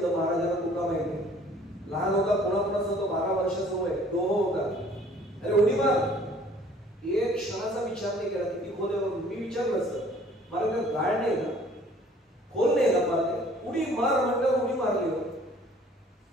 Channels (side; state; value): both; normal; correlation 0.55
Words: महाराजांना, तुका माहिती लहान होता, कोणाकोणाचा तो 12 वर्षाचा वय, डोह होता, अरे उडी मार. एक क्षणाचा विचार नाही केला किती खोल आहे. मी विचारलं सर मला काय गाळ नाही ना, खोल नाही ना, मारते उडी मार म्हणलं, उडी मारली.